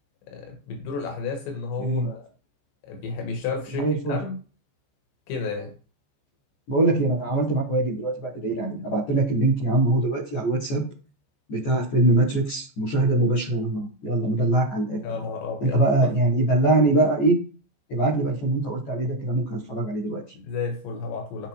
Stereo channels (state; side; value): late; right; 14 ms